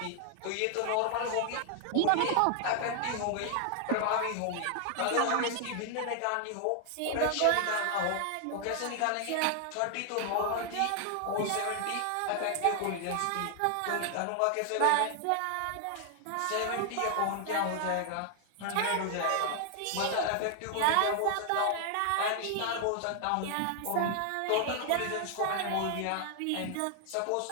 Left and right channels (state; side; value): different; both; correlation 0.00